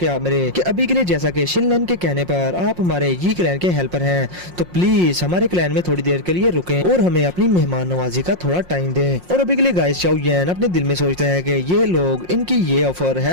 कि शिनलैन के कहने पर आप हमारे यी क्लैन के हेल्पर हैं, तो प्लीज हमारे क्लैन में थोड़ी देर के लिए रुकें और हमें अपनी मेहमान नवाजी का थोड़ा टाइम दें। और अभी के लिए गाइस शाओयन अपने दिल में सोचता है कि ये लोग इनकी ये ऑफर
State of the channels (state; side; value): late; left; 5.6 ms